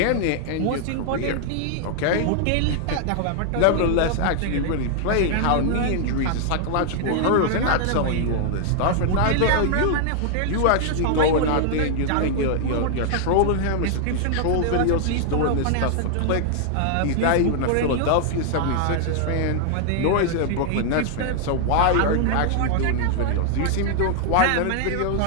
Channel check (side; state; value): both; different; correlation 0.00